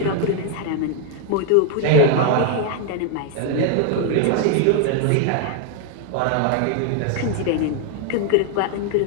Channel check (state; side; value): different; both; correlation 0.00